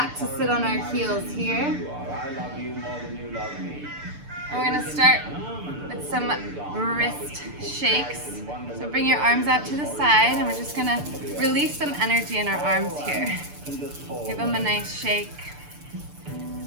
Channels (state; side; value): late; left; 6.8 ms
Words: to sit on our heels here. I love you more than you love me. And we're going to start with some wrist shakes. So bring your arms out to the side and we're just going to release some energy in our arms here. Give them a nice shake.